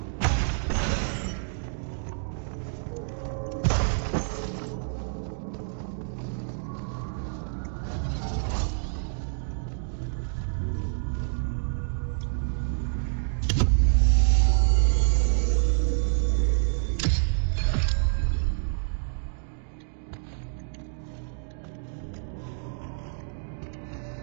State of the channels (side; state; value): left; silent; digital silence